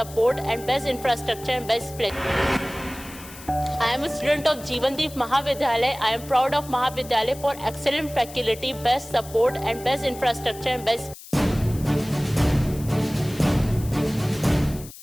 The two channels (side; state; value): left; noise; hiss, 17 dB below the sound